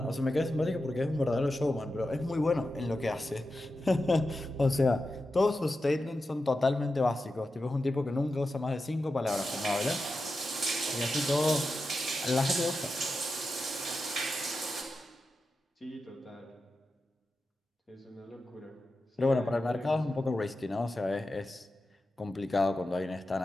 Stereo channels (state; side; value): normal; both; correlation 0.91